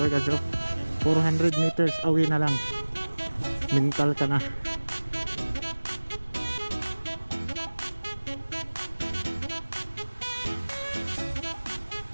400 meters away na lang, Mental ka na.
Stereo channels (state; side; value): inverted; both; correlation -1.00